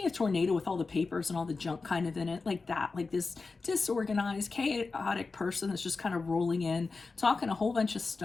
a tornado with all the papers and all the junk kind of in it? Like that, like this disorganized, chaotic person that's just kind of rolling in, talking a whole bunch of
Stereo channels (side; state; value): right; quieter; 4.1 dB